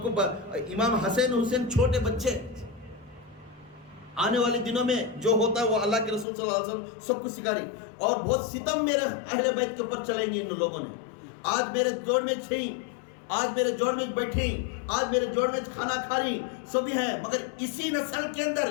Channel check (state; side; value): drops out; right; at 6.2 s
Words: کو امام حسین چھوٹے بچے، آنے والے دنوں میں جو ہوتا ہے وہ اللہ کے رسول صلی اللہ علیہ وسلم سب کو سکھاری، اور بہت ستم میرے اہل بیت کے اوپر چلیں گے ان لوگوں نے. آج میرے جوڑ میں چھیں، آج میرے جوڑ میں بیٹھی، آج میرے جوڑ میں کھانا کھا رہی سبھی ہیں، مگر اسی نسل کے اندر